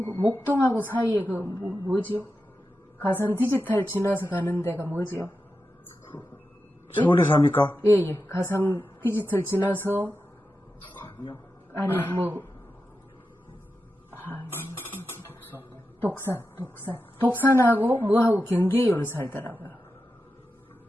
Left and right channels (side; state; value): both; normal; correlation 0.90